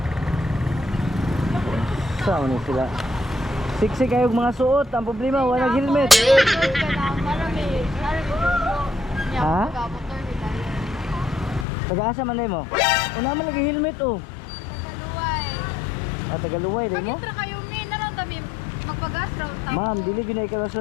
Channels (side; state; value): right; drops out; at 11.7 s